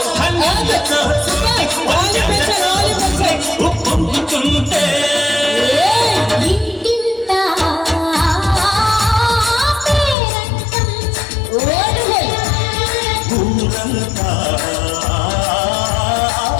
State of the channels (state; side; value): drops out; right; at 10.2 s